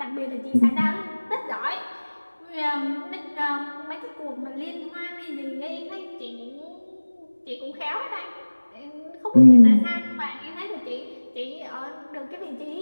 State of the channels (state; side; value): inverted; both; correlation -1.00